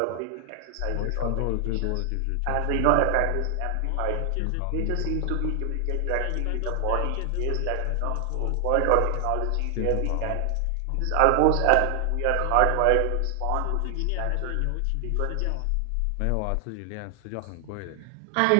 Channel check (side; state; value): both; different; correlation 0.00